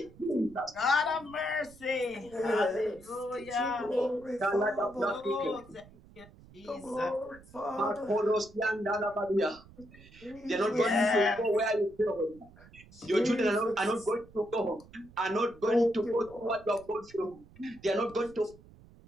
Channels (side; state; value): right; noise; rumble, 23 dB below the sound